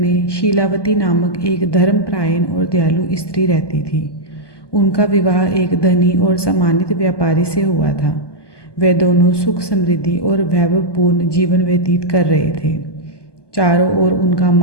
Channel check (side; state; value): right; late; 1.2 ms